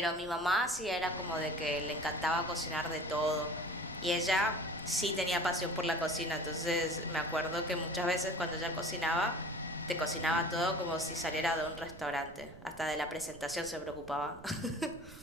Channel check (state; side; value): noise; right; rumble, 18 dB below the sound